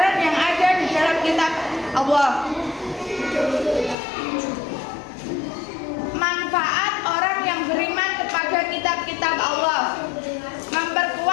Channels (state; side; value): drops out; right; at 4.0 s